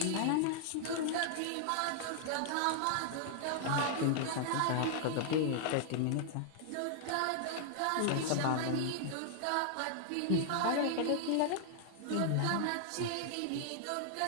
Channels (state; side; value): different; both; correlation -0.01